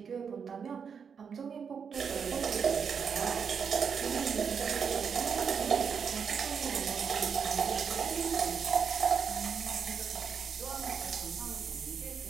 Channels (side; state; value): left; quieter; 6.6 dB